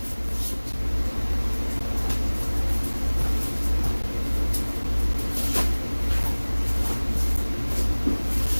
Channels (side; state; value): both; inverted; correlation -1.00